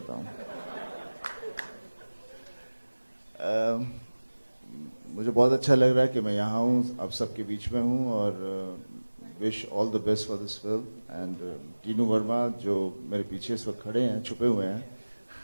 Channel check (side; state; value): both; inverted; correlation -1.00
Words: हूं। मुझे बहुत अच्छा लग रहा है कि मैं यहाँ हूँ, आप सबके बीच में हूँ और wish all the best for this film. And Tinu Verma जो मेरे पीछे इस वक्त खड़े हैं, छुपे हुए हैं,